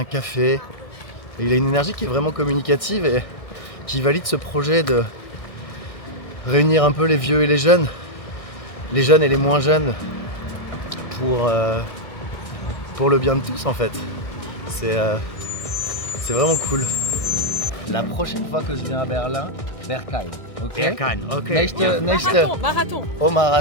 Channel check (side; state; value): right; late; 1.6 ms